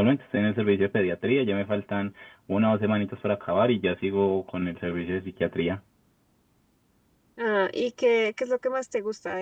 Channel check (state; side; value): identical; both; correlation 1.00